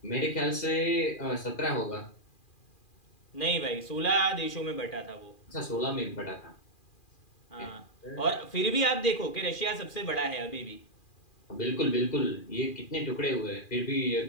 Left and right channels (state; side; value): late; right; 2.4 ms